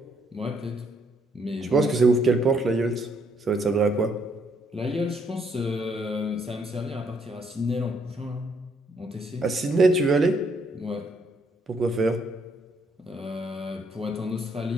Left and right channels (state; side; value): normal; both; correlation 0.71